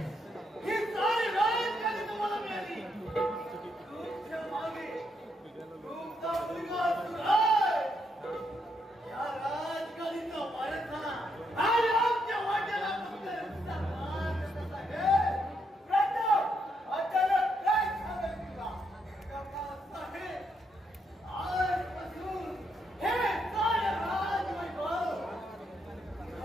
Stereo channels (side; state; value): both; normal; correlation 0.78